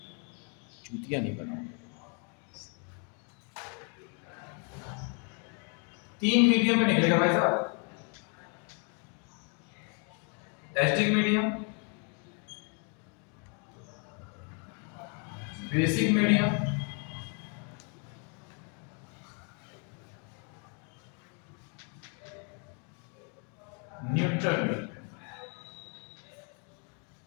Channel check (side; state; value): right; quieter; 38.9 dB